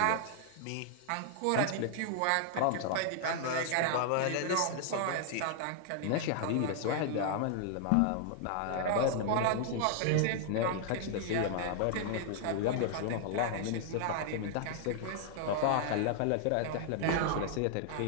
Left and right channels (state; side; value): different; both; correlation 0.00